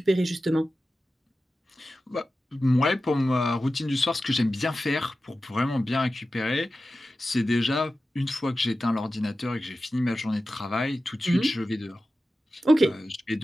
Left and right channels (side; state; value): both; normal; correlation 0.93